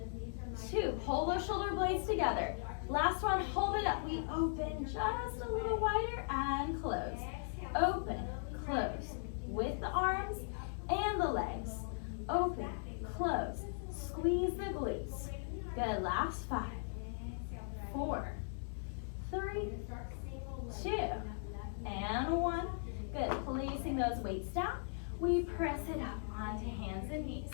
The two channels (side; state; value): right; silent; digital silence